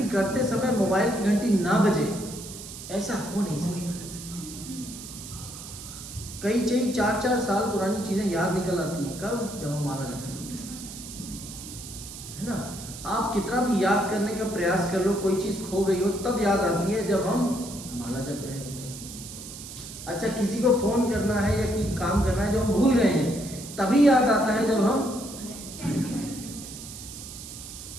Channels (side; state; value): right; noise; hiss, 12 dB below the sound